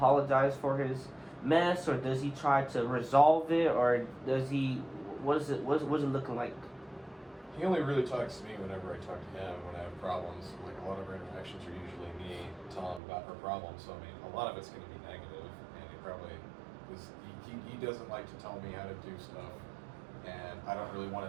for his mess, or does he try to resolve it, or does he what's it looking like? He only really talks to me whenever I talk to him when I have problems. Like a lot of our interactions are usually me telling him about our problems. So I mean, a lot of it's going to be negative, and he probably he doesn't like to tell me how to do stuff, and I don't really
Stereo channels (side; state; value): left; drops out; at 13.0 s